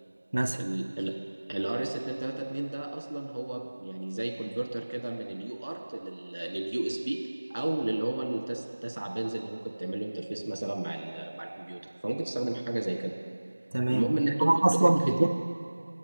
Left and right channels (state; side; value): inverted; both; correlation -1.00